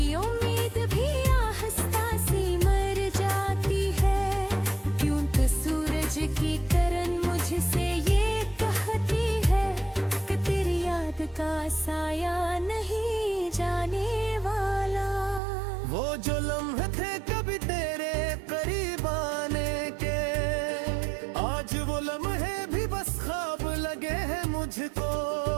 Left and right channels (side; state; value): left; drops out; at 15.4 s